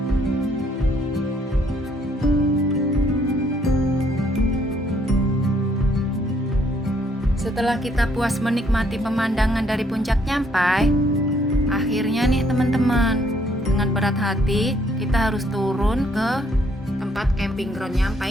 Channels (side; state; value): both; normal; correlation 0.68